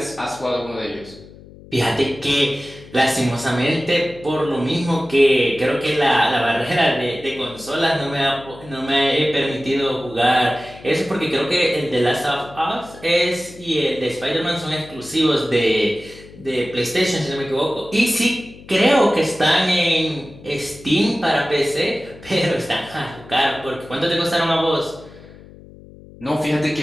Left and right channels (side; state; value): left; noise; hum, 20 dB below the sound